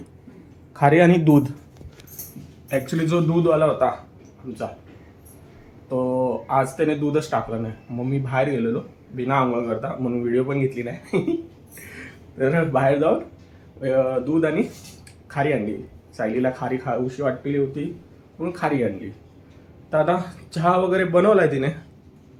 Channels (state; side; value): identical; both; correlation 1.00